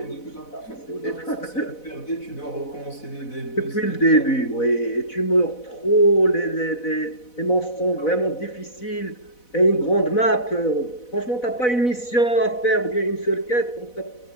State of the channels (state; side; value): late; right; 4.0 ms